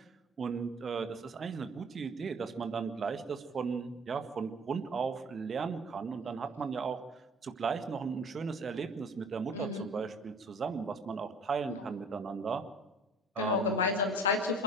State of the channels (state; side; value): normal; both; correlation 0.48